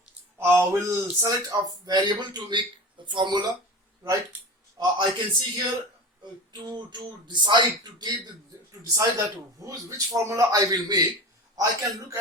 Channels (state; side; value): normal; both; correlation 0.31